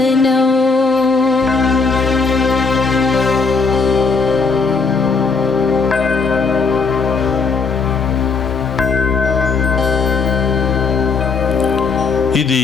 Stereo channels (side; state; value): right; quieter; 4.7 dB